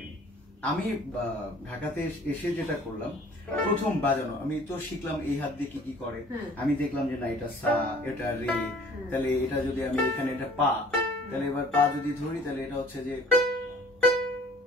আমি ঢাকাতে এসে যেটা করলাম, প্রথম বাজানো আমি তো শিখলাম এই হাত দিয়ে কি কি করে। আমি দেখলাম যে না এটা সা, এটা রে, তাহলে এটা যদি আমি এখানে এটা পা, তাহলে এবার পা যদি ধরি তাহলে এটা হচ্ছে যে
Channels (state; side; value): normal; both; correlation 0.52